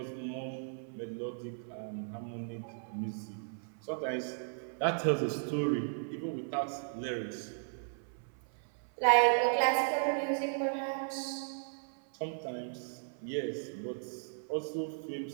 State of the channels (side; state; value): left; silent; 54 dB below the other